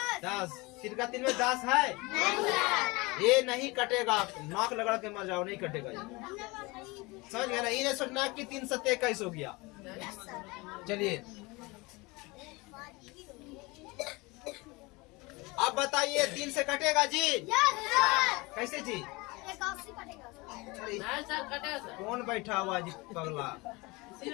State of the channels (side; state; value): right; quieter; 24.6 dB